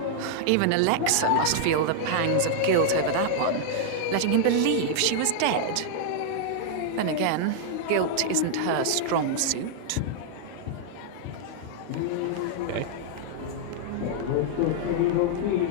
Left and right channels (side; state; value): both; different; correlation -0.01